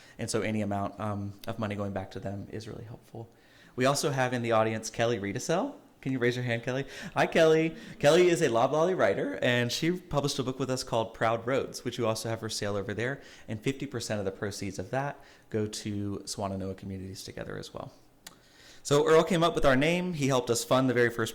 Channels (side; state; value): both; identical; correlation 1.00